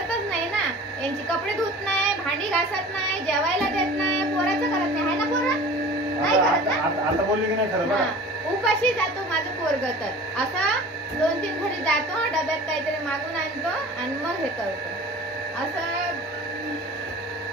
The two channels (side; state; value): both; normal; correlation 0.41